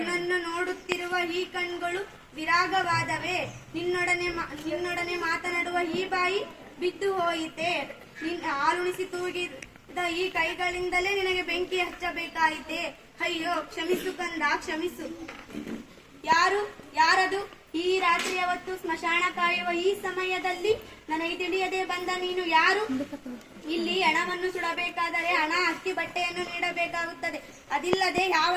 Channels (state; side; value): identical; both; correlation 1.00